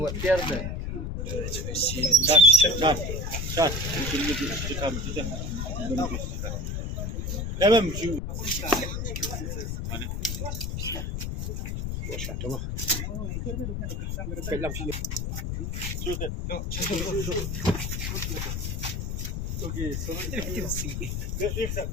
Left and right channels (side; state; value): left; noise; rumble, 3 dB below the sound